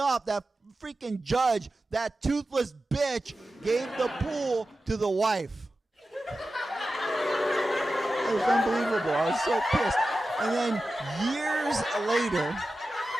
that freaking judge, that toothless bitch, gave the pool to the wife. It was unbelievable. I was so pissed. And then years later,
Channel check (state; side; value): normal; both; correlation 0.93